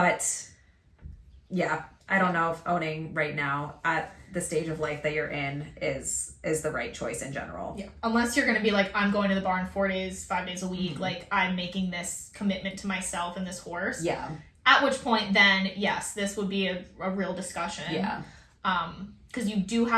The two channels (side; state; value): both; identical; correlation 1.00